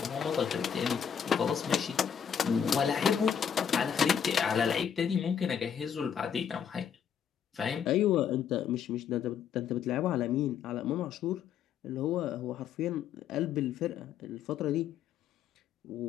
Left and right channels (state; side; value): quieter; right; 8.0 dB